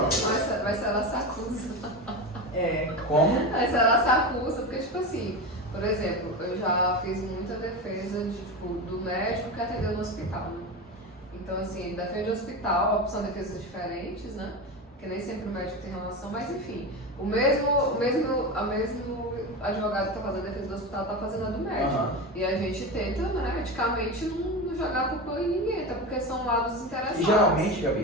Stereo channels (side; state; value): both; normal; correlation 0.22